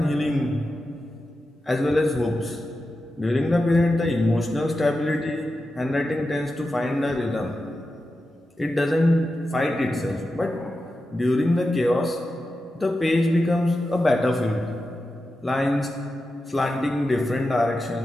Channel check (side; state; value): both; normal; correlation 0.91